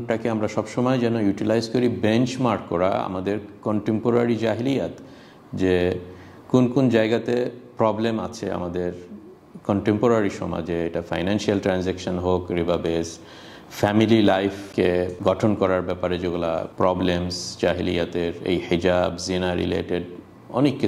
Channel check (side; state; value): both; identical; correlation 1.00